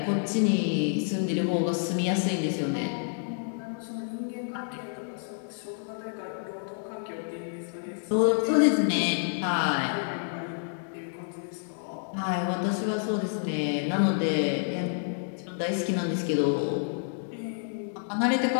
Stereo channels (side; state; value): right; silent; digital silence